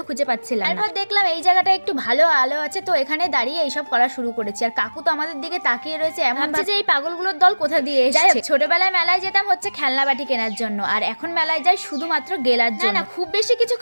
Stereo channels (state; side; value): inverted; both; correlation -1.00